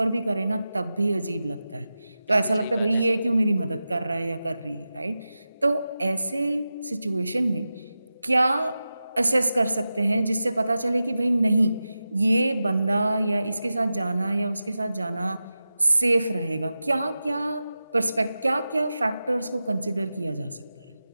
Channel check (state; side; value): inverted; both; correlation -0.93